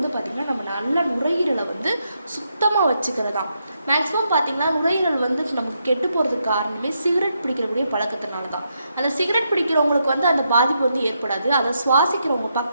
நம்ம நல்ல நுரையீரலை சுத்தமாக வச்சுக்கிறதா. மேக்ஸிமம் பார்த்திங்கன்னா நுரையீரல் நமக்கு கெட்டு போகிறதுக்கு காரணமே சிகரெட் பிடிக்கிறக்கூடிய பழக்கத்தினால தான். அந்த சிகரெட் பிடிக்கிறவங்களுக்கு அந்த பாதிப்பு ஏற்படாது. அதை சுவாசிக்கிறவங்க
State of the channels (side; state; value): both; inverted; correlation -0.81